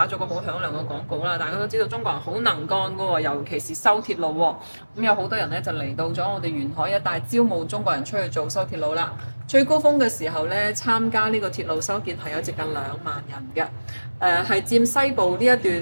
咗個好響亮嘅廣告啦！大家都知道中國人好能幹㗎喎，尤其是修鐵路喎。咁有好多人咧就嚟到咗我哋沿海一帶招募中國人出去做修鐵路啦。最高峰嘅時候咧，參加呢個鐵路修建係有接近2萬人嘅，係佔西部呢一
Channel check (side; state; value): both; inverted; correlation -1.00